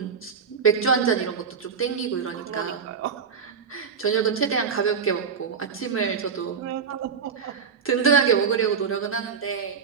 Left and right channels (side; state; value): left; quieter; 6.4 dB